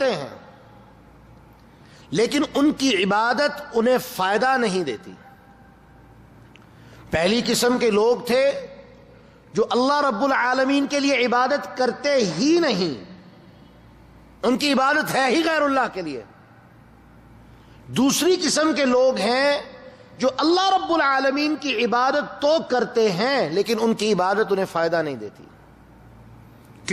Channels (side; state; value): both; identical; correlation 1.00